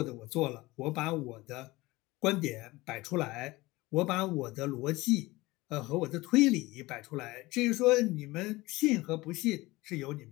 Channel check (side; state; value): right; quieter; 20.5 dB